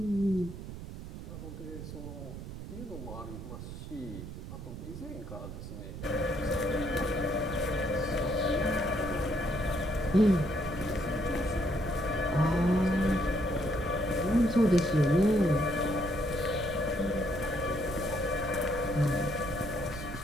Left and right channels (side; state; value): right; noise; rumble, 10 dB below the sound